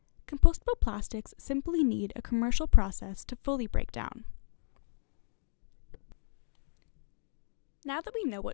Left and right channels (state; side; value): silent; right; digital silence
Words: Compostable plastics simply need a commercial process to fully break down. Now that we know